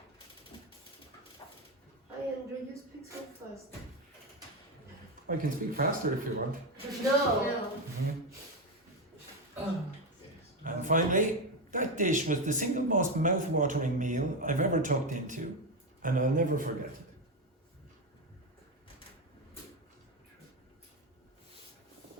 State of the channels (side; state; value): both; normal; correlation 0.12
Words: Hi, Andrew, you speak so fast. I can speak faster if you want. No. And finally, that dish was the single most mouth-watering meal I've ever tucked into, and I'll never forget it.